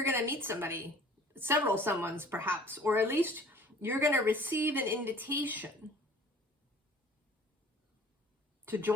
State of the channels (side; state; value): both; normal; correlation 0.49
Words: going to meet somebody, several someones perhaps, or at least you're going to receive an invitation to